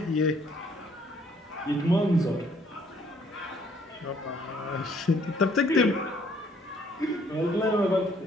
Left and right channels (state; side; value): normal; both; correlation 0.64